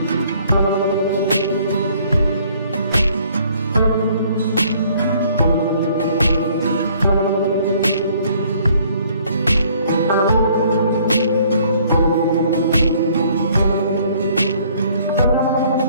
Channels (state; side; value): inverted; both; correlation -0.60